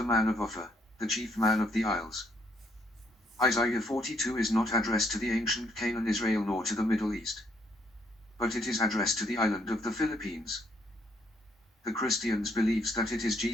man of OPHIR, the chief man of the Isles. Isaiah 42 is not addressed to the ancient Canaan Israel nor to the Middle East, but it is addressed to the island of the Philippines. The Christians believes that it is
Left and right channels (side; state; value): both; normal; correlation 0.71